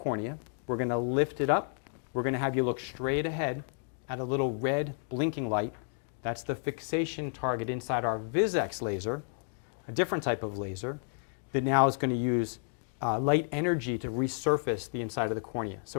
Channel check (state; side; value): silent; right; 57 dB below the other